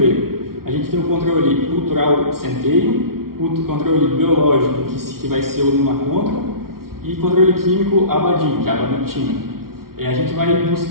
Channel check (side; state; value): left; late; 0.93 ms